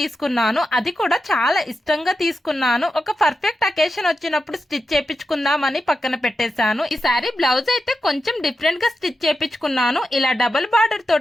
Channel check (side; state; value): both; normal; correlation 0.89